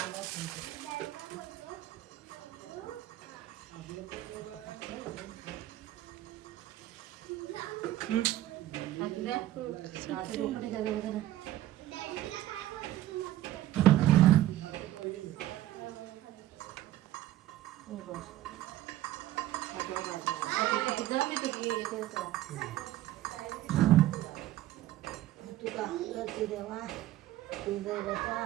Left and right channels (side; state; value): left; quieter; 14.2 dB